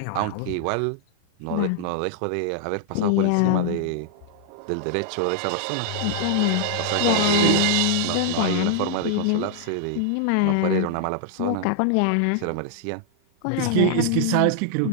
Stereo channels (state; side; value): different; both; correlation -0.01